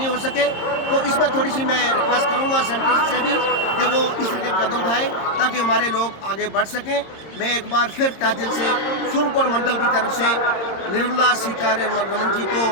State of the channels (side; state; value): right; late; 26 ms